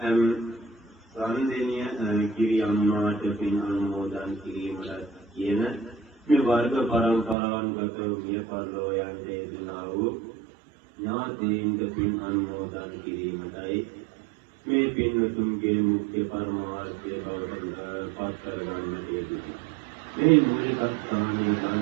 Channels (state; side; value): drops out; left; at 7.4 s